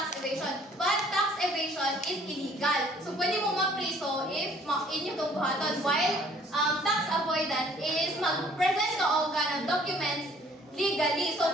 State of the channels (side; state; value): both; normal; correlation 0.58